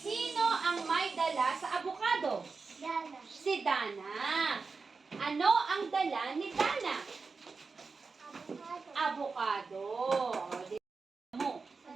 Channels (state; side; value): quieter; left; 4.5 dB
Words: ang may dala sa avocado? Si Dana. Ano ang dala ni Dana? Avocado. O, di mo.